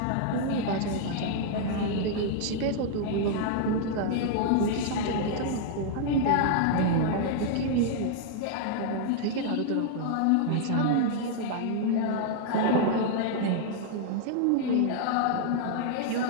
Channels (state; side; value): different; both; correlation -0.01